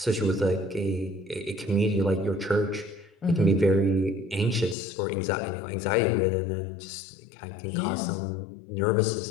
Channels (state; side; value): drops out; right; at 4.8 s